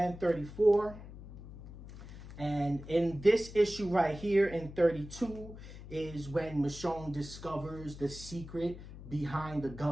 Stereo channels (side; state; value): left; noise; hum, 14 dB below the sound